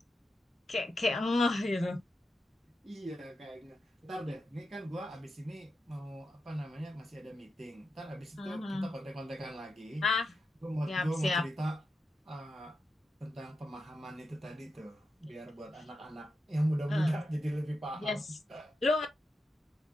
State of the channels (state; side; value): normal; both; correlation 0.88